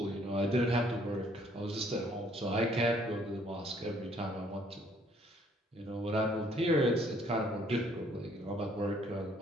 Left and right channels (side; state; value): both; normal; correlation 0.63